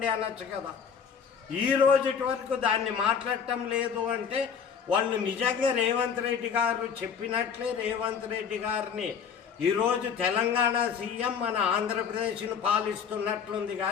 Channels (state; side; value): quieter; right; 7.0 dB